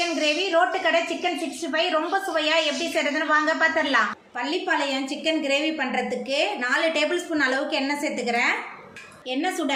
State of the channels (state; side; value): identical; both; correlation 1.00